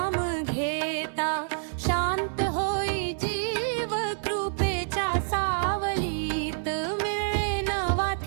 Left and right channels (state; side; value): silent; left; digital silence